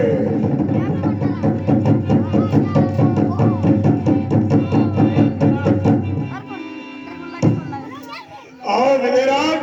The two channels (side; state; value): both; identical; correlation 1.00